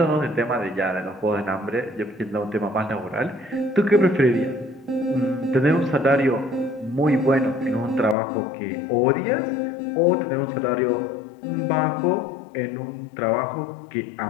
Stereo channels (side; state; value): right; drops out; at 8.2 s